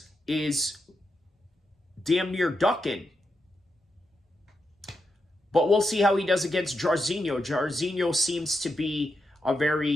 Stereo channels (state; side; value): normal; both; correlation 0.85